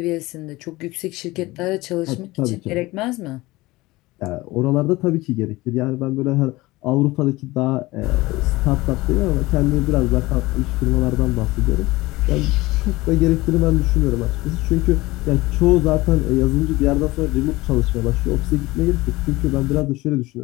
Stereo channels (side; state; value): right; quieter; 20.0 dB